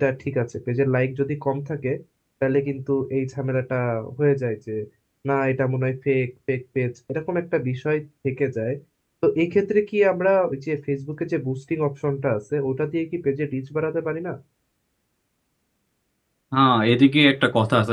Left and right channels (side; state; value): both; identical; correlation 1.00